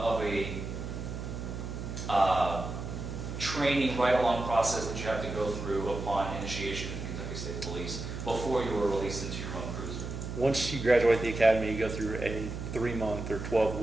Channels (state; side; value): noise; right; hum, 6 dB below the sound